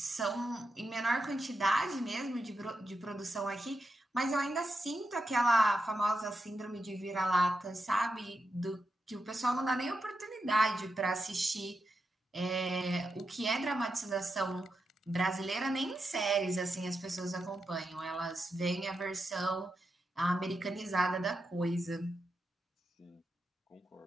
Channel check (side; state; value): both; normal; correlation 0.87